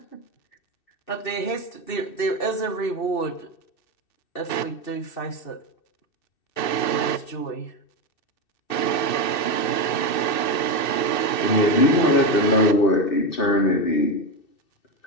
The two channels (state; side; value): late; right; 2.6 ms